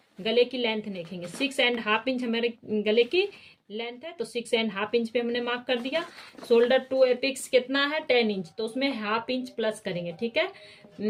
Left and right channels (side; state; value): both; identical; correlation 1.00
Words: गले की लेंथ देखेंगे, 6.5 इंच हमारे गले की लेंथ है, तो 6.5 इंच पे हमने मार्क कर दिया। शोल्डर टू एपिक्स कितना है, 10 इंच, तो उसमें 1/2 इंच प्लस करेंगे, ठीक